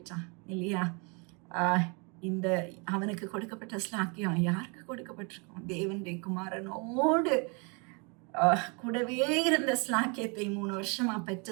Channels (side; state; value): left; quieter; 32.8 dB